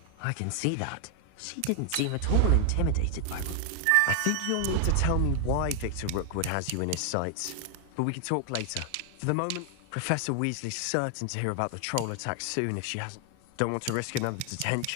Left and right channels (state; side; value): different; both; correlation 0.00